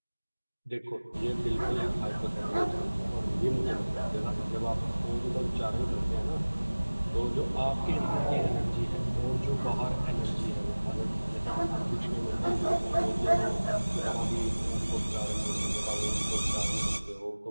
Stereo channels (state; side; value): inverted; both; correlation -1.00